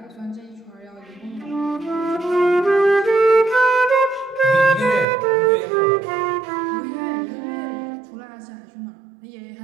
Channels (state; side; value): drops out; left; at 5.1 s